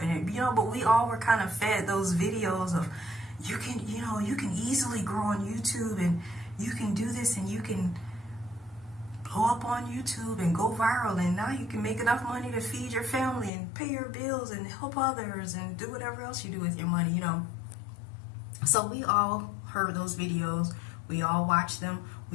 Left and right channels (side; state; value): right; drops out; at 13.5 s